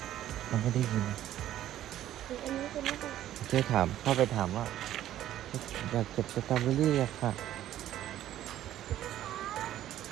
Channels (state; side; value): quieter; left; 12.6 dB